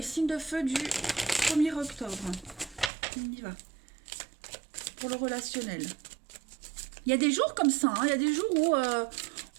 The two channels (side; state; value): left; drops out; at 2.9 s